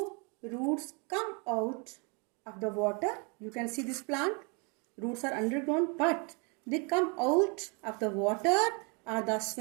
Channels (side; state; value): left; quieter; 33.7 dB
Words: roots come out of the water. You can see this plant. Roots are underground, but they come out of the water or the